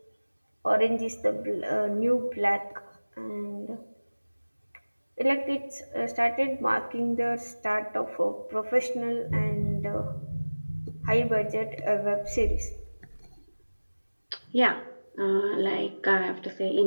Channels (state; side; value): inverted; both; correlation -1.00